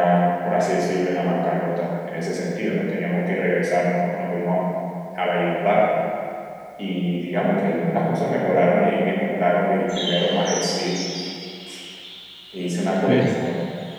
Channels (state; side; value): identical; both; correlation 1.00